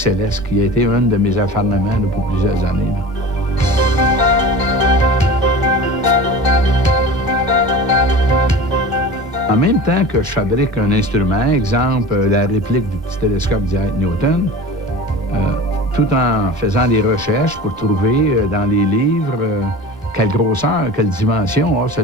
qui a été un de mes acharnements pour plusieurs années. En même temps que je fabrique un instrument, exemple la réplique du petit télescope d'Isaac Newton, tout en faisant des recherches pour trouver dans les livres quelle grosseur, quelle dimension a ce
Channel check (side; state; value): both; normal; correlation 0.35